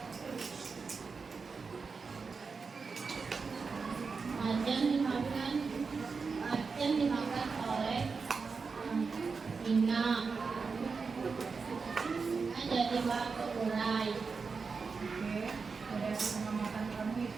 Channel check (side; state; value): left; quieter; 4.9 dB